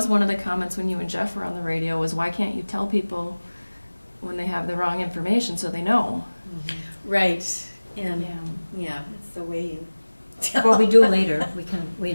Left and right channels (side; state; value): both; inverted; correlation -1.00